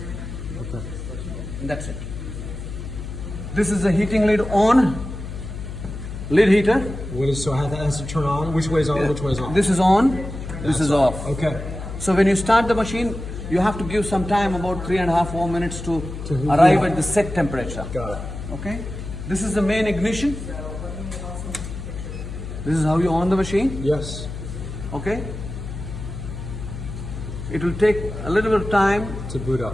Okay. and that's it. This is the heating lid on, lid heater. What is so? How that has to turn on? Which way is on? Which way is on? This is on, this is off. Okay. So when you start the machine, you have to give some time, about 3.5 4 minutes to heat arrive it. at the set temperature. Got it. Okay? This is the main ignition. This is how you on the machine. Yes. Okay? It will take a little bit of time To boot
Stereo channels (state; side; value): noise; left; hum, 8 dB below the sound